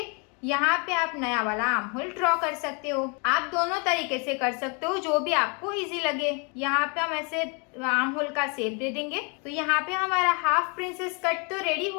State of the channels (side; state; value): right; quieter; 34.6 dB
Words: यहाँ पे आप नया वाला आर्म होल ड्रॉ कर सकते हो। आप दोनों तरीके से कर सकते हो, जो भी आपको इजी लगे। यहाँ पे हम ऐसे आर्म होल का शेप दे देंगे। तो यहाँ पे हमारा हाफ प्रिंसेस कट तो रेडी